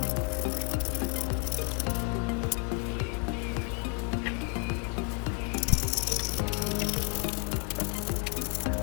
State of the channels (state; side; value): quieter; right; 37.7 dB